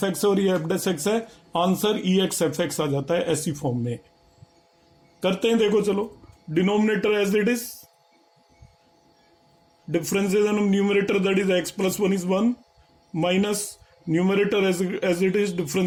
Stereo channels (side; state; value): both; identical; correlation 1.00